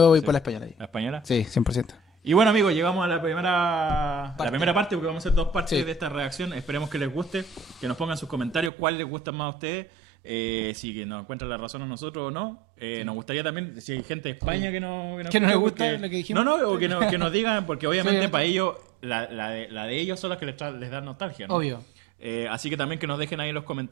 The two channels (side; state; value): left; drops out; at 8.7 s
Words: voy sí. por la española ahí. ¿La española? Sí, 100%. Y bueno, amigos, llegamos a la primera parte, porque vamos a hacer 2 partes Sí. de esta reacción. Esperemos que les guste, que nos pongan sus comentarios cuál les gusta más a ustedes. Si que nos encuentran la razón a nosotros o no. Nos gustaría también, si hay gente de España que no Que no les escucha, gusta porque- lo que dijimos. No, o que nos digan, porque obviamente obviamente. para ellos, la de ellos son las que les da nostalgia, ¿no? Obvio. Así que también que nos dejen ahí en los